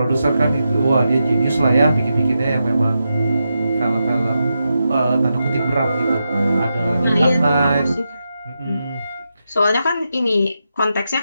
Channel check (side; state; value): both; inverted; correlation -0.87